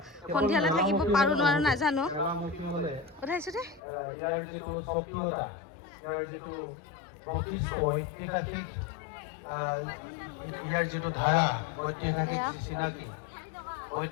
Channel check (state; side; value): drops out; right; at 3.8 s